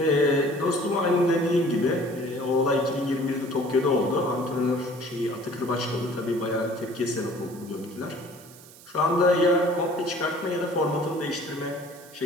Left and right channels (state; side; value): noise; right; hiss, 21 dB below the sound